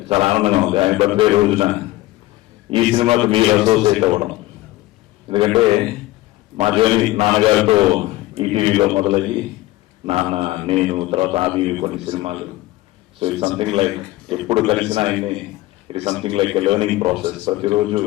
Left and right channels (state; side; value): quieter; right; 17.8 dB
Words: చాలా ఆనందంగా ఉంది ఆయన బర్త్డే రోజున ఈ సినిమాకు మీరు అసోసియేట్ అవ్వడం. ఎందుకంటే మా జర్నీ నాన్నగారితో ఈటీవీలో మొదలయ్యి నాన్న, నేను, తర్వాత ఆది కొన్ని సినిమాలు. సో ఇట్ సంథింగ్ లైక్ ఎప్పుడు కలిసిన ఆయన్ని it is something like a learning process. ప్రతిరోజు